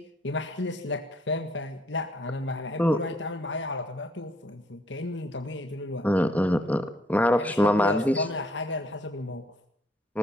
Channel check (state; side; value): normal; both; correlation 0.66